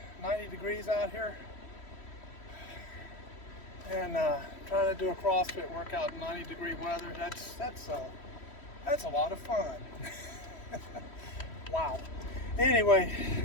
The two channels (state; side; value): late; right; 3.1 ms